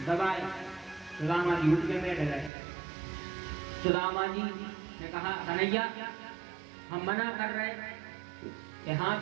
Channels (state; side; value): drops out; left; at 2.5 s